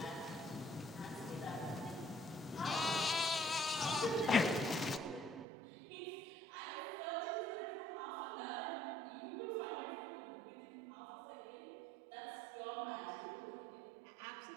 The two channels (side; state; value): left; drops out; at 5.5 s